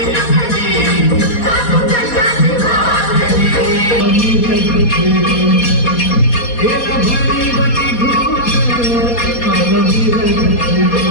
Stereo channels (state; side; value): late; right; 4.2 ms